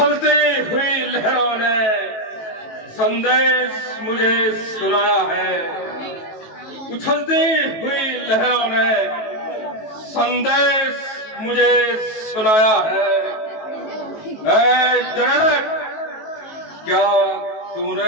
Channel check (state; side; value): late; right; 19 ms